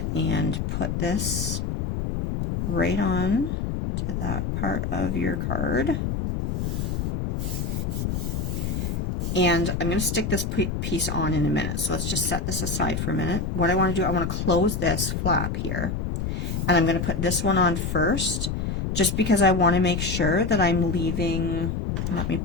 and put this right on to that part of your card. And I'm going to stick this piece on in a minute. So let's just set this aside for a minute. What I want to do, I want to close this flap here. And I'm going to put this one on first, just because I want to make sure that I'm leaving, let me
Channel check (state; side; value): noise; left; rumble, 2 dB below the sound